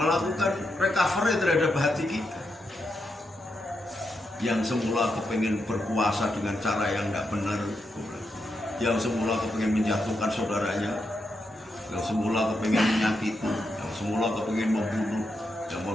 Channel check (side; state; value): both; normal; correlation 0.84